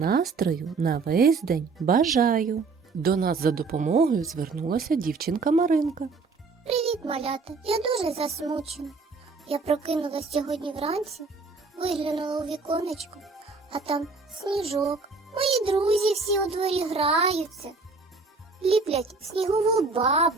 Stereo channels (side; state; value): left; quieter; 4.2 dB